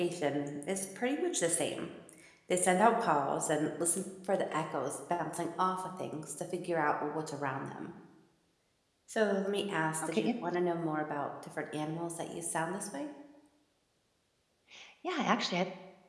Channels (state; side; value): identical; both; correlation 1.00